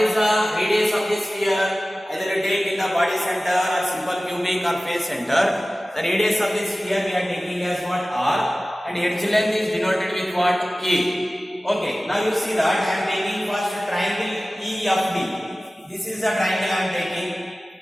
the radius of this sphere? Either take in the body center or simple cubic or face center. The radius of this sphere we are taking as what? R. And edge length is denoted with what? A. Okay, now you see that I am taking first triangle EFD. This is the triangle I am taking,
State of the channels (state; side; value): normal; both; correlation 0.97